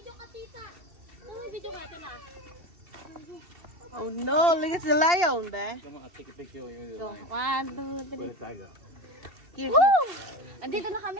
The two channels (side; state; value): left; late; 2.7 ms